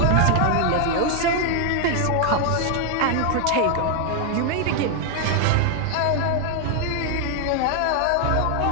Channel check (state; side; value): different; both; correlation 0.00